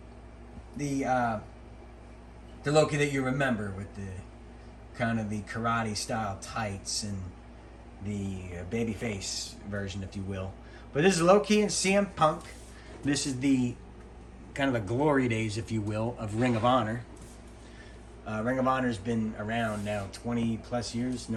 the Low Key that you remember with the kind of the karate style tights and the babyface version, if you will. But this is Low Key and CM Punk. This is the kind of the glory days, if you will, of Ring of Honor. Ring of Honor's been around now 20 plus years.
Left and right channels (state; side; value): identical; both; correlation 1.00